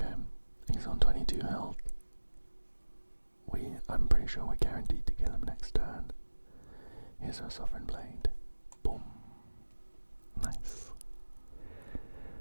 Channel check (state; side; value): inverted; both; correlation -1.00